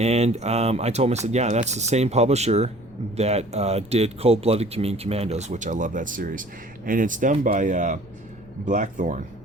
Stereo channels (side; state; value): right; noise; rumble, 27 dB below the sound